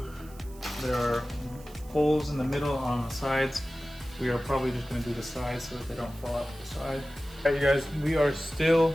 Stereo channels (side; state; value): right; noise; hiss, 23 dB below the sound